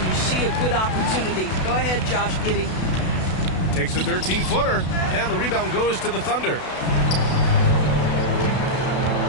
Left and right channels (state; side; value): late; right; 32 ms